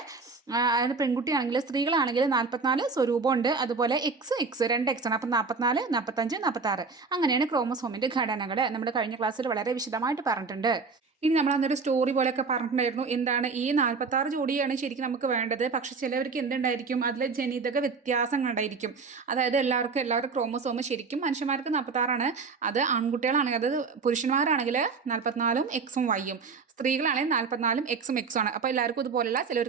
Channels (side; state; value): left; quieter; 4.7 dB